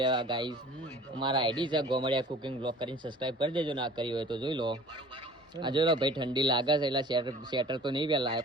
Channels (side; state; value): both; normal; correlation 0.46